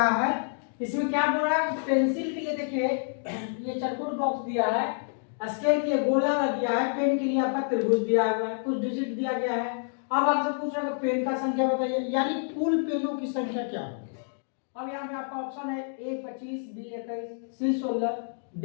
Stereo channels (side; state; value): right; silent; digital silence